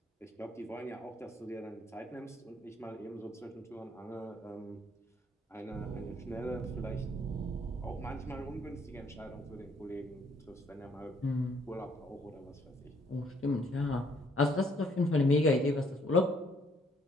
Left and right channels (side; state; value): both; normal; correlation 0.66